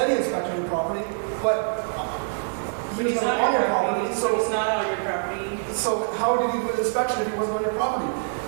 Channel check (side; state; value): left; silent; digital silence